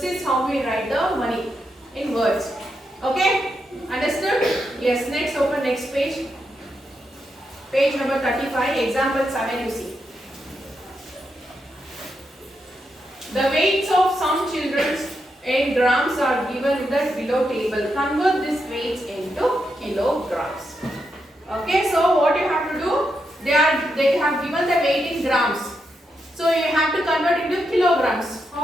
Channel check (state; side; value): normal; both; correlation 0.83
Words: is how we write the money in words. Okay? Understood? Yes. Next, open next page. Page number 35. Example 7 you see. The weights of some children in grams are given in the below table. Convert these weights into kilograms. Okay? So what you have to do? They have given the weight in grams. So you have to convert into kilograms.